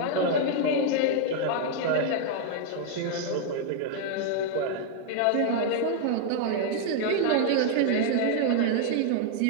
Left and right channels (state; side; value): different; both; correlation 0.00